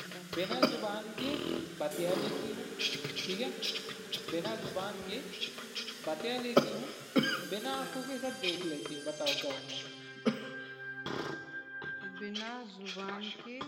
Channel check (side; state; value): both; identical; correlation 1.00